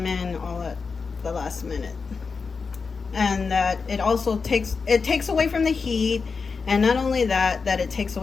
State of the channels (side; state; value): right; quieter; 4.9 dB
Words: in all at the last minute. And that it also takes away from the heat, and not only that it takes